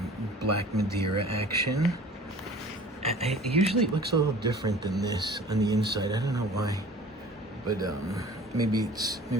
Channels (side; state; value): both; normal; correlation 0.45